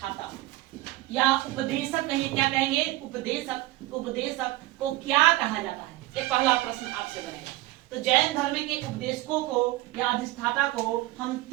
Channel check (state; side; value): quieter; left; 18.1 dB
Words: या उपदेशक कहिए, क्या कहेंगे? उपदेशक। उपदेशक को क्या कहा जाता है? ये पहला प्रश्न आपसे बनेगा। तो जैन धर्म के उपदेशकों को या अधिष्ठाता को हम